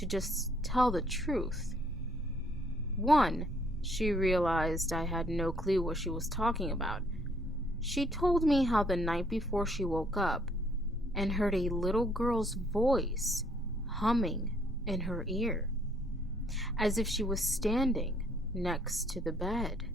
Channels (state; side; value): normal; both; correlation 0.65